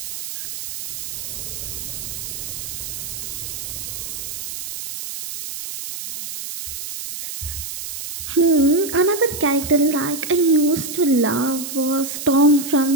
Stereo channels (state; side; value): noise; right; hiss, 7 dB below the sound